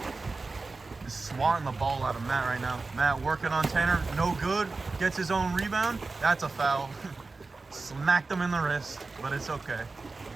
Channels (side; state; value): left; quieter; 3.8 dB